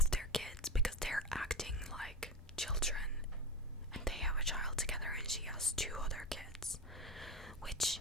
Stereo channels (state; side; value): normal; both; correlation 0.21